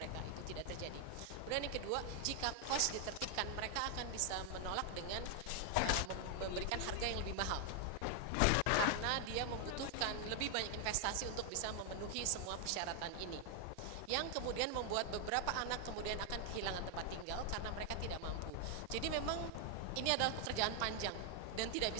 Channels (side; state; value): both; different; correlation 0.00